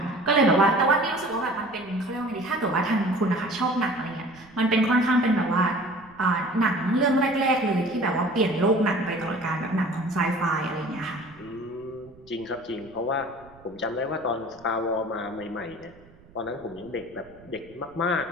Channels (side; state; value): right; noise; rumble, 25 dB below the sound